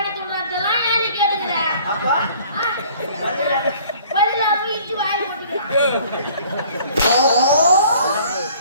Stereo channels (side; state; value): both; inverted; correlation -0.54